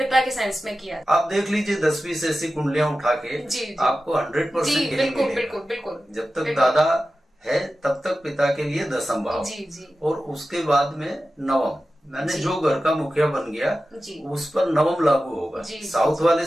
के सेंस में किया। आप देख लीजिए 10-20 से ऐसी कुंडलियां उठा के आपको 100% बिल्कुल। जब तक दादा है तब तक पिता के लिए दशम भाव, और उसके बाद में नवम। मैंने जो घर का मुखिया बन गया उस पर नवम लागू होगा। साउथ वाले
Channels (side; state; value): both; normal; correlation 0.94